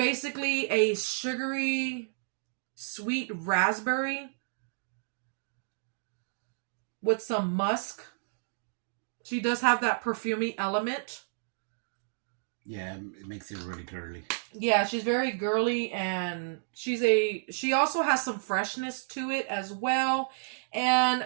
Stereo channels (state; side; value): silent; left; digital silence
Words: a sugary, sweet raspberry with some musk. She does have that perfumey element. Yeah, it makes it really girly. Yeah, she's very girly, and she also has some freshness to it as well.